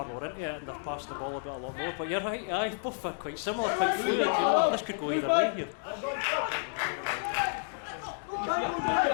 more into it and they're passing the ball a lot more. But you're right, aye, both are quite similar, quite fluid, you know. This could go either way here.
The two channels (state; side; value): silent; right; digital silence